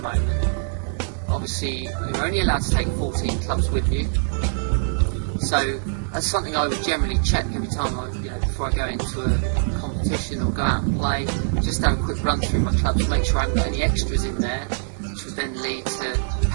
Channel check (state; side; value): silent; left; 63 dB below the other